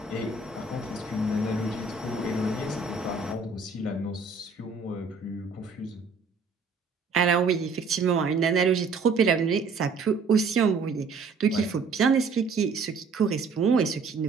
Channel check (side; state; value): left; quieter; 4.5 dB